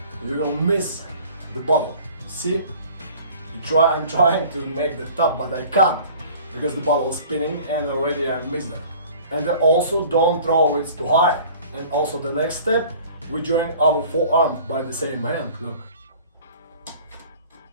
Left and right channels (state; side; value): inverted; both; correlation -0.47